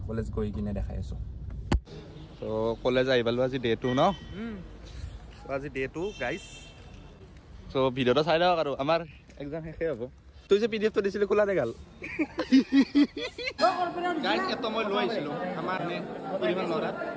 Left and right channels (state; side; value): identical; both; correlation 1.00